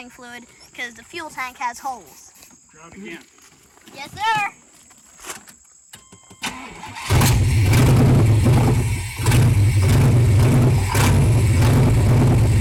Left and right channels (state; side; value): identical; both; correlation 1.00